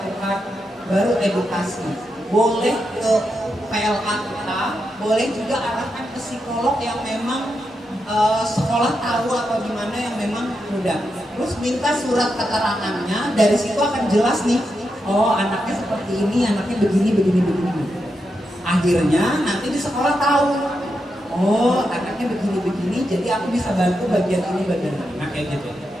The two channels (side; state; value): both; normal; correlation 0.85